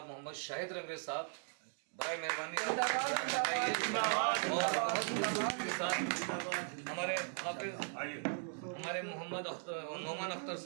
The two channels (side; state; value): left; silent; 52 dB below the other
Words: मोहम्मद शाहिद रंगरेज साहब, बराए मेहरबानी और हमारे हाफिज हमारे मोहम्मद नौमान अख्तर